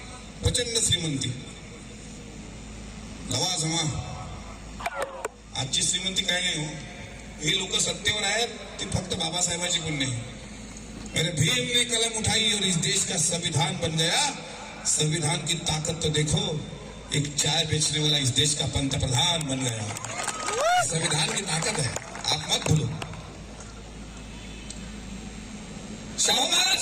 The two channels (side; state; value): both; identical; correlation 1.00